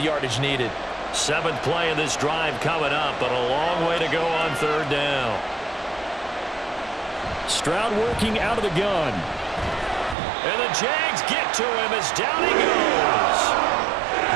yardage needed. 7th play of this drive coming up, but a long way to go on 3rd down. Stroud working out of the gun. And the Jags get to him as down he goes.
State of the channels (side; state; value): left; drops out; at 10.2 s